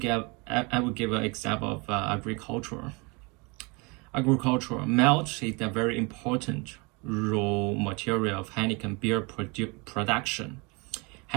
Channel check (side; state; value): left; quieter; 28.9 dB